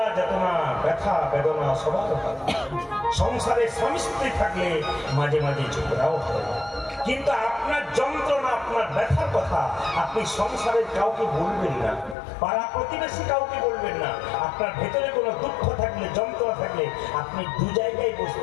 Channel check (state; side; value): drops out; right; at 12.2 s